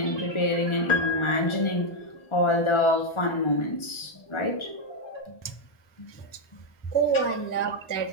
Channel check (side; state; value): right; late; 1.4 ms